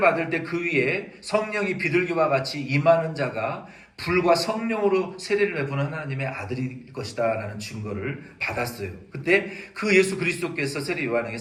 때 그 위에 성령이 비둘기와 같이 임하는 자가 불과 성령으로 세례를 베푸는 하나님의 아들일 것이다 라는 증거를 받았어요. 그때 그 예수 그리스도께서 세례 요한에게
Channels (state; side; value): identical; both; correlation 1.00